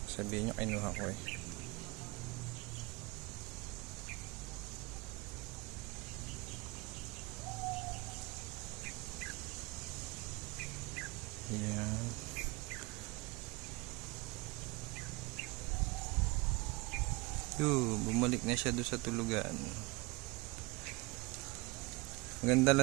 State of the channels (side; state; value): left; quieter; 25.2 dB